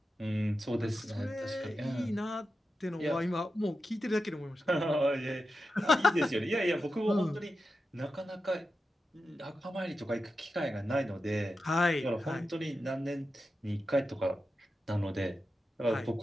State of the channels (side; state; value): both; normal; correlation 0.90